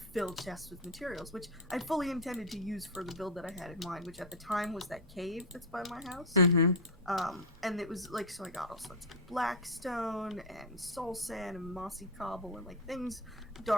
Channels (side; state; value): both; normal; correlation 0.06